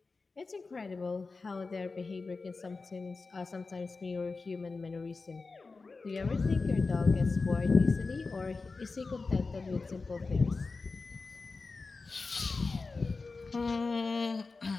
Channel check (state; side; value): quieter; right; 4.0 dB